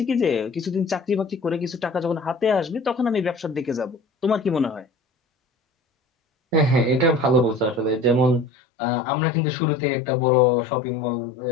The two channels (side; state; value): right; drops out; at 8.5 s